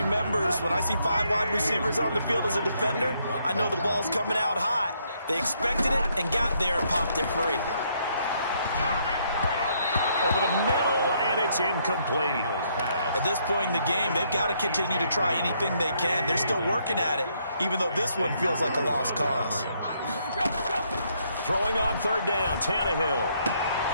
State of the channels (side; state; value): both; inverted; correlation -0.72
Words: when I see 5 wide receivers on the field as a defender, I know the ball's coming out hot. They expected it and got there and popped it free. Over the middle, and it's incomplete. At this point in the game, they've got to continue to try anything they can. They're still working at it, even though this one feels like a lost cause. Throwing on 3rd down, Tannehill.